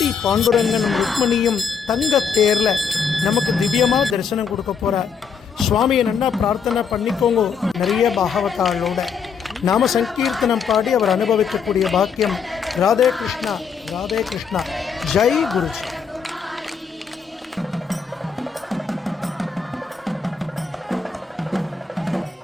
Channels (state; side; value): quieter; right; 6.2 dB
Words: பாண்டுரங்கனும் ருக்மணியும் தங்க தேரில் நமக்கு திவ்யமாக தரிசனம் கொடுக்க போகிறார். சுவாமியை நல்லா பிரார்த்தனை பண்ணிக்கோங்க. நிறைய பாகவதாளோட நாம சங்கீர்த்தனம் பாடி அவர் அனுபவிக்கக்கூடிய பாக்கியம். ராதே கிருஷ்ணா, ராதே கிருஷ்ணா. ஜெய் குருஜி.